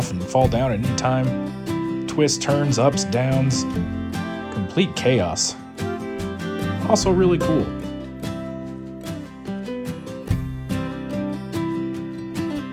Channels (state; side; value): identical; both; correlation 1.00